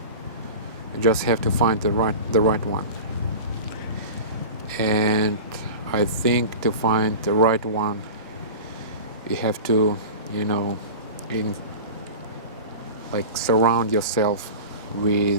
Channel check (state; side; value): inverted; both; correlation -0.33